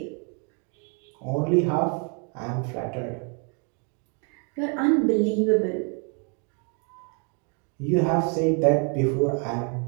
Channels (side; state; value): left; quieter; 38.5 dB